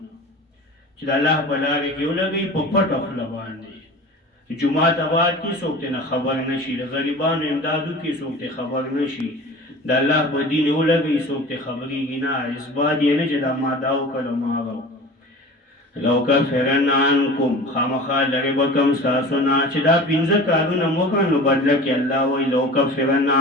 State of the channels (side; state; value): both; normal; correlation 0.38